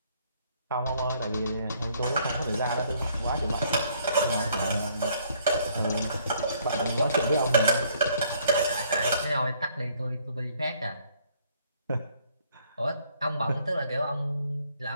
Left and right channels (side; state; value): both; inverted; correlation -0.64